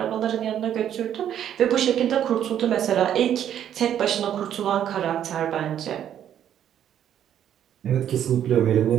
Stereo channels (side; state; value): left; quieter; 10.1 dB